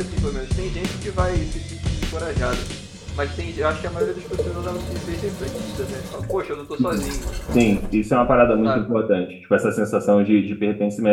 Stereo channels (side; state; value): both; identical; correlation 1.00